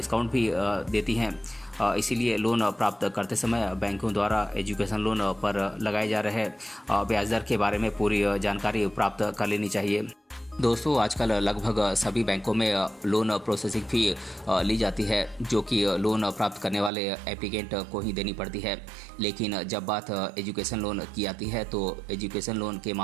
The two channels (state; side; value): drops out; left; at 16.9 s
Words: भी देती हैं। इसीलिए लोन प्राप्त करते समय बैंकों द्वारा एजुकेशन लोन पर लगाए जा रहे ब्याज दर के बारे में पूरी जानकारी प्राप्त कर लेनी चाहिए। दोस्तों आजकल लगभग सभी बैंकों में लोन प्रोसेसिंग फ़ी ली जाती है, जो कि लोन प्राप्त करने वाले एप्लीकेंट को ही देनी पड़ती है। लेकिन जब बात एजुकेशन लोन की आती है तो एजुकेशन लोन के